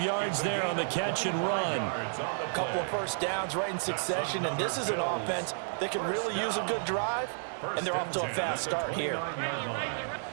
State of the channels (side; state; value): left; silent; 57 dB below the other